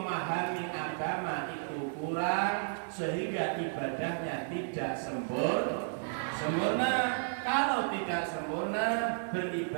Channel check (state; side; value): silent; left; 56 dB below the other